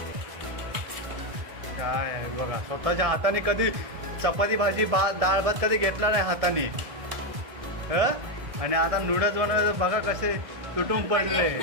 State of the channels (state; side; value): late; left; 1.6 ms